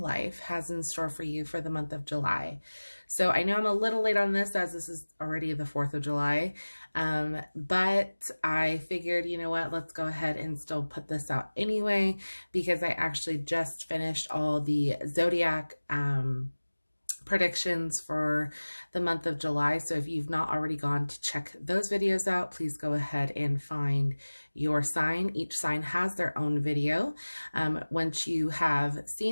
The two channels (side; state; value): both; inverted; correlation -1.00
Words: has in store for you for the month of July. So I know I'm a little late on this as this is already the 4th of July, but I figured, you know what, let's go ahead and still put this out anyway, because I actually just finished all the zodiac predictions for the month of July. So if you've not already gone to check those videos out, please go ahead and find your sign. Each sign has their own video. Once you have